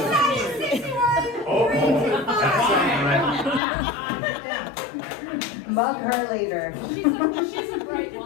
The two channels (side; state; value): right; drops out; at 3.6 s